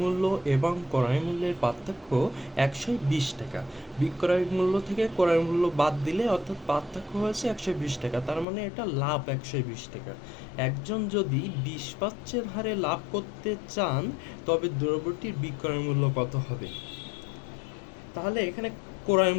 মূল্য এবং ক্রয় মূল্যের পার্থক্য 120 টাকা। বিক্রয় মূল্য থেকে ক্রয় মূল্য বাদ দিলে অর্থাৎ পার্থক্য হয়েছে 120 টাকা, তার মানে এটা লাভ 120 টাকা। একজন যদি 20% হারে লাভ করতে চান তবে দ্রব্যটির বিক্রয় মূল্য কত হবে? তাহলে এখানে ক্রয়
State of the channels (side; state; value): right; drops out; at 8.5 s